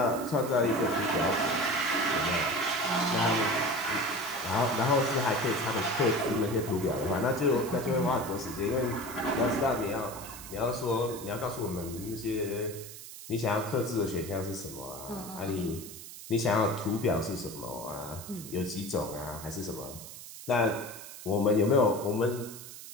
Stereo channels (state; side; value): noise; right; hiss, 13 dB below the sound